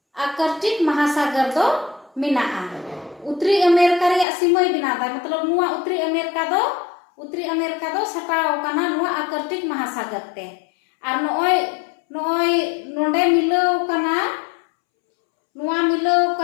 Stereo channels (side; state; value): right; drops out; at 4.2 s